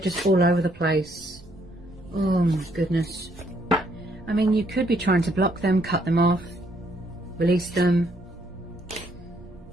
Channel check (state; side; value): noise; right; rumble, 22 dB below the sound